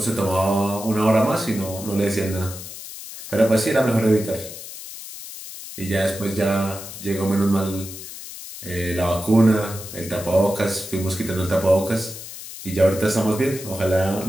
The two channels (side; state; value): left; noise; hiss, 12 dB below the sound